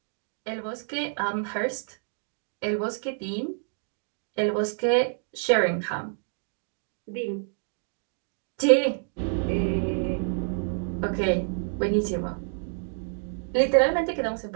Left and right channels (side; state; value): left; silent; 59 dB below the other